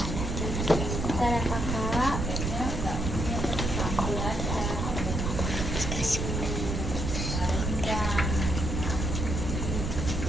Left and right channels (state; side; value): noise; right; rumble, 2 dB below the sound